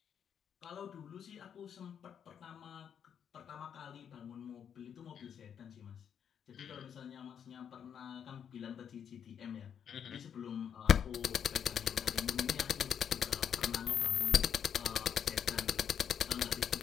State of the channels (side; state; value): right; quieter; 8.2 dB